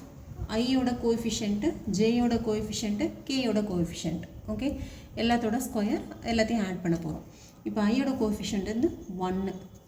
ஐயோட கோஎஃபிஷியன்ட்டு, ஜேயோட கோஎஃபிஷியன்ட்டு, கேயோட கோஎஃபிஷியன்ட், ஓகே, எல்லாத்தோட ஸ்கொயர் எல்லாத்தையும் ஆட் பண்ண போகிறோம். இப்போ ஐயோட கோஎஃபிஷியன்ட் வந்து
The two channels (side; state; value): both; identical; correlation 1.00